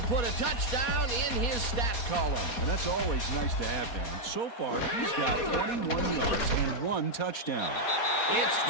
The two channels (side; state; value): right; late; 4.2 ms